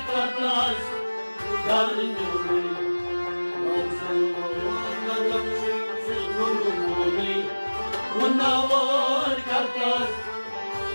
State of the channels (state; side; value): inverted; both; correlation -1.00